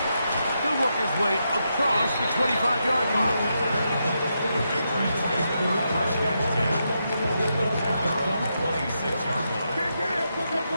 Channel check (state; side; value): inverted; both; correlation -0.83